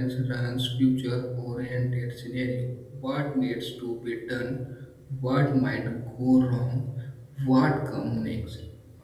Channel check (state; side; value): identical; both; correlation 1.00